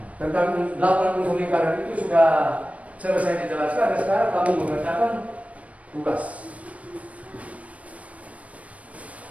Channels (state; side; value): late; left; 0.066 ms